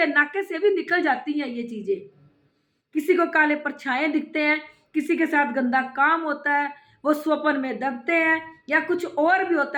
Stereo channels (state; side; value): identical; both; correlation 1.00